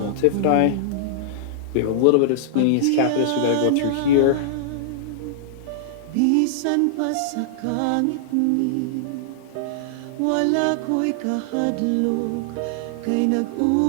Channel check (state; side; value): different; both; correlation -0.01